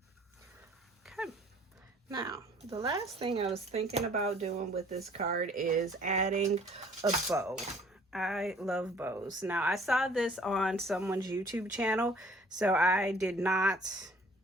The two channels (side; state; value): both; normal; correlation 0.55